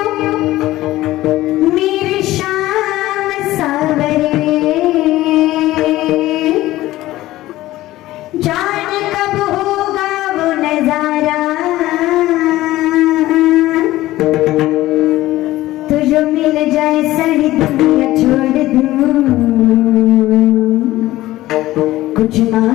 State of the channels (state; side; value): quieter; right; 16.3 dB